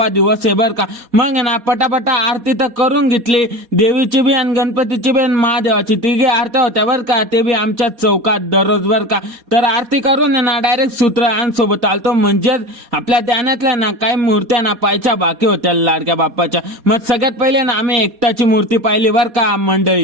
दिवस आहे बर का. मग ना पटापटा आरती तर करून घेतली, देवीची बी आणि गणपतीची बी आणि महादेवाची तिघे आरत्या होत्या बर का. ते बी आमच्या चौकात दररोज बर का. तर आरती करून ना डायरेक्ट सूत्रआंसोबत आलतो, म्हणजेच आपल्या ध्यानातल्या ना काही मूर्त्या ना पाहायच्या बाकी होत्या लाडक्या बाप्पाच्या. मग सगळ्यात पहिले ना आम्ही एकताची मूर्ती पाहिली बर का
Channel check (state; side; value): late; left; 4.2 ms